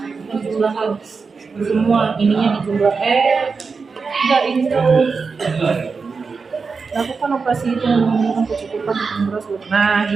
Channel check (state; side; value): quieter; left; 4.9 dB